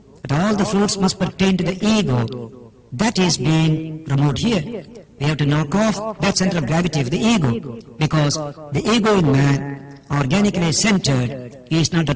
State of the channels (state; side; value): identical; both; correlation 1.00